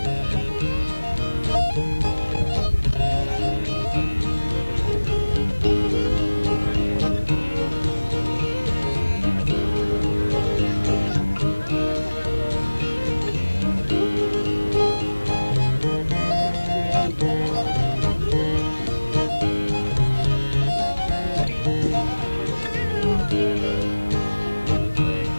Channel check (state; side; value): inverted; both; correlation -1.00